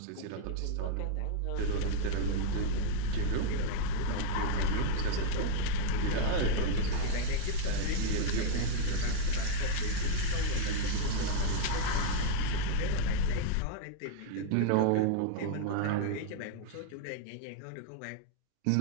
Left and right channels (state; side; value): different; both; correlation 0.00